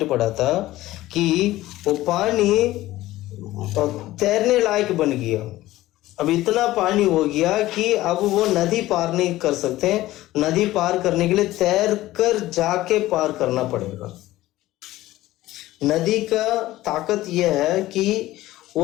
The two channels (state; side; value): quieter; right; 16.3 dB